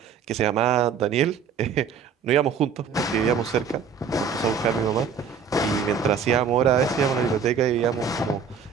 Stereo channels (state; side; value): quieter; left; 6.4 dB